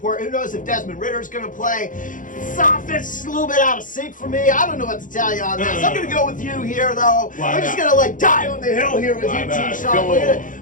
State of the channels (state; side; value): late; right; 0.38 ms